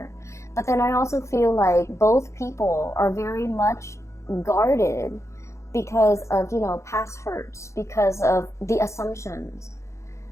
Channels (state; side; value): late; right; 0.14 ms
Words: But then I also feel like both people are very much guarded because of, you know, past hurts, because of the assumptions,